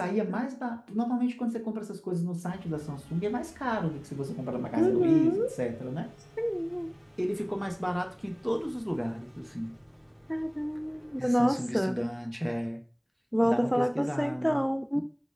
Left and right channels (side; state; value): both; identical; correlation 1.00